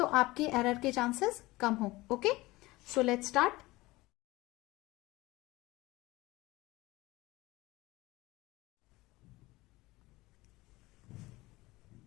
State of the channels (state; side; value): quieter; right; 20.1 dB